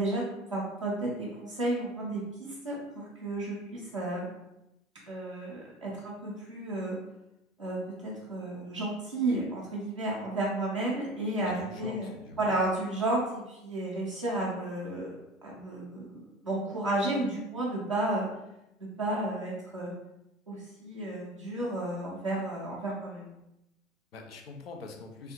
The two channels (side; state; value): both; normal; correlation 0.39